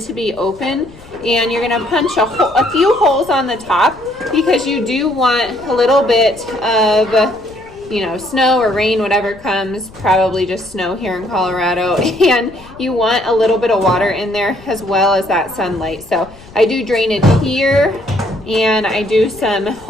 to be open, and you're going to punch a few holes on the top because you do want a little bit of snow or rain, whatever comes, probably just snow here in Colorado, and you want a little bit of water in there as well as that sunlight. So I do drainage here and I do some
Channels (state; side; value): noise; left; rumble, 22 dB below the sound